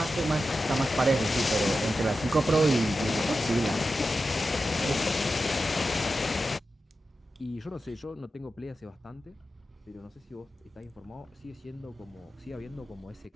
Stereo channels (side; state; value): both; normal; correlation 0.91